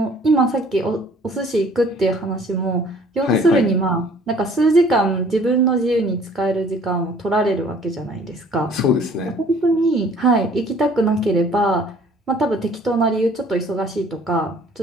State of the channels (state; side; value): normal; both; correlation 0.55